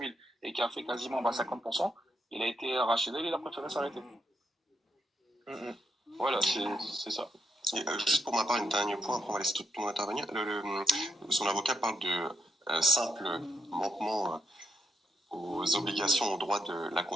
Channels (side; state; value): both; normal; correlation 0.79